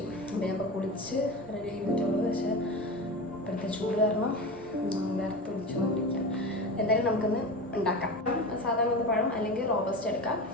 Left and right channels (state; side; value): normal; both; correlation 0.27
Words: അപ്പോൾ ഞാൻ ഇപ്പോൾ കുളിച്ച് റെഡി ചെയ്തിട്ടുള്ളൂ. പക്ഷേ ഇപ്പോഴത്തെ ചൂട് കാരണം വേർത്ത് പിടിച്ചുകൊണ്ടിരിക്കാം. എന്തായാലും നമുക്കൊന്ന് ഉണ്ടാക്കാം. സാധാരണ പഴം അല്ലെങ്കിൽ റോബസ്റ്റ് എടുക്കാം.